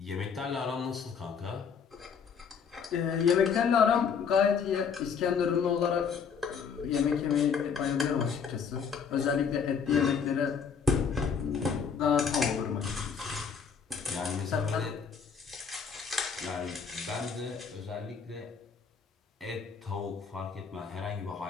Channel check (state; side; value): quieter; right; 6.4 dB